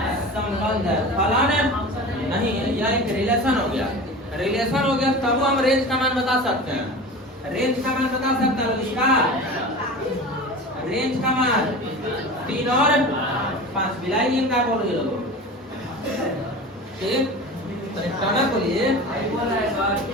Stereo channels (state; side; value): normal; both; correlation 0.33